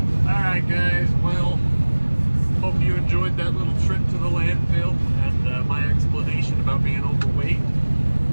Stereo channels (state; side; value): inverted; both; correlation -1.00